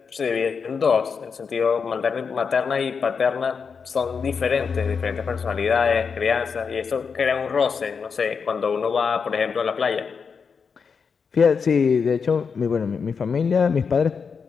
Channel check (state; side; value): quieter; right; 5.8 dB